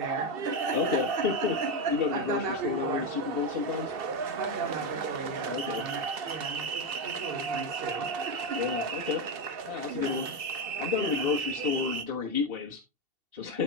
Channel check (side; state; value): left; late; 2.7 ms